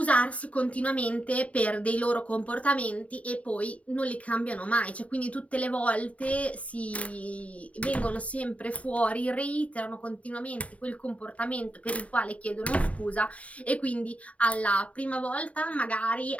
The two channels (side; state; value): right; late; 0.067 ms